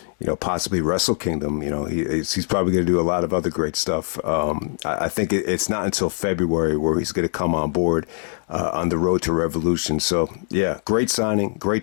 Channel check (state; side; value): silent; right; digital silence